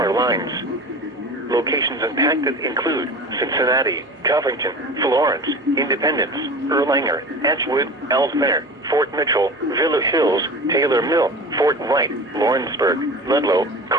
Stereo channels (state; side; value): normal; both; correlation 0.35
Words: lines. Locations impacted include Cincinnati, Covington, Florence, Independence, Erlanger, Edgewood, Ellesmere, Fort Mitchell, Villa Hills, Taylor Mill, Fort Wright, Lawrenceburg, Ludlow,